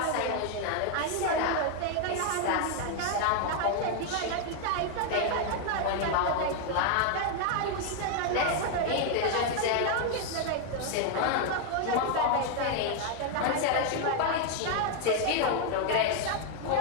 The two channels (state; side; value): different; both; correlation 0.01